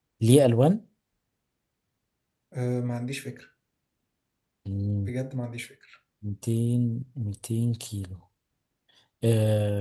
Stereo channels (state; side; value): identical; both; correlation 1.00